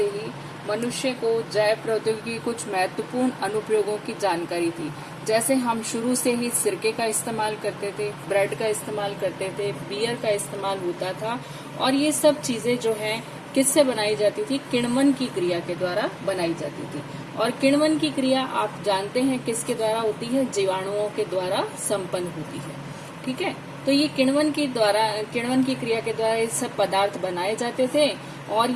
ही मनुष्य को जैव प्रौद्योगिकी की कुछ महत्वपूर्ण अनुप्रयोगों की जानकारी थी। जैसे हम शुरू से ही सिरके का इस्तेमाल करते थे, ब्रेड का इस्तेमाल करते थे, बियर का इस्तेमाल होता था। और ये सब चीजें जो है किससे बनाई जाती थी? किण्वन की क्रिया के द्वारा बनाई जाती थी। और किण्वन की क्रिया आप जानते हैं किसके द्वारा होती है? जीवाणुओं के द्वारा संपन्न होती है। ठीक है, तो ये किण्वन की क्रिया के द्वारा ये सब पदार्थ बनाए जाते थे और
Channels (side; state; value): both; identical; correlation 1.00